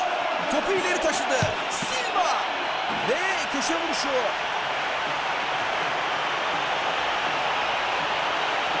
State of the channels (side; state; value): both; identical; correlation 1.00